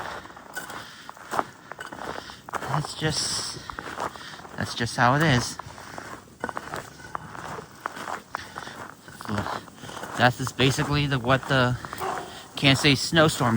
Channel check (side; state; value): both; identical; correlation 1.00